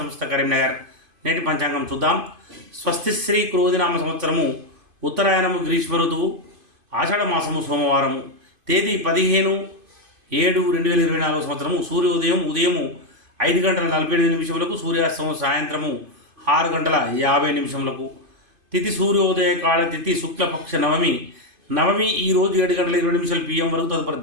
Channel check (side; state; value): left; late; 2.5 ms